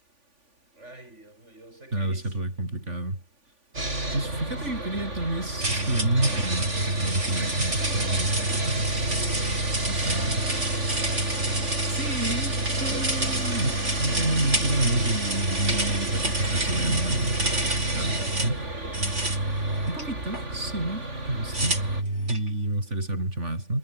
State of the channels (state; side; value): late; left; 3.5 ms